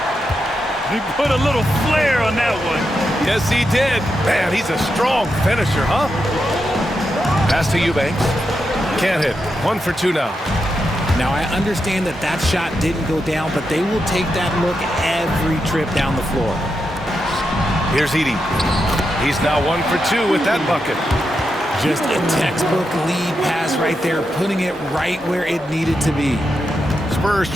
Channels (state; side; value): normal; both; correlation 0.86